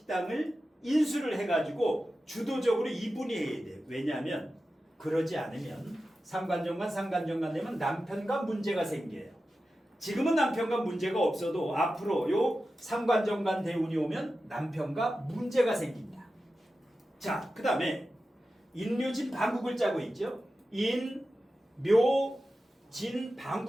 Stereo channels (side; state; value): both; normal; correlation 0.93